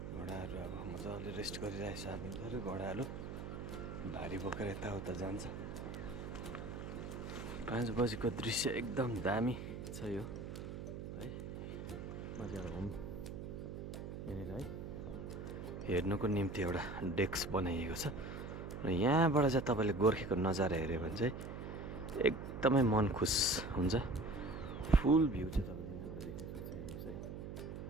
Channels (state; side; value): noise; right; hum, 7 dB below the sound